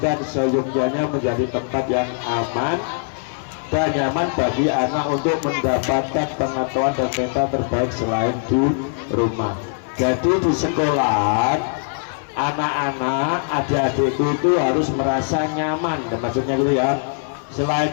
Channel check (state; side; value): silent; right; 57 dB below the other